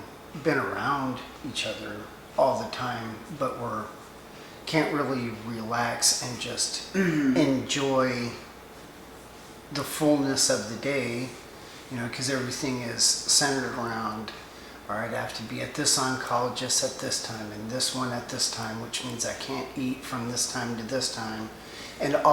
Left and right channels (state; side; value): identical; both; correlation 1.00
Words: been around each other all the time, but can't really relax and just enjoy the fullness of the day, because everything is centered around, all right, I have to be at this oncologist at this time and this one at this time, which means I can't eat from this time to this time. And